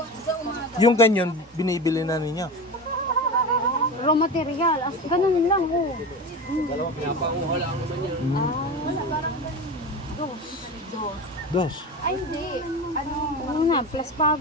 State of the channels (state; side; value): normal; both; correlation 0.27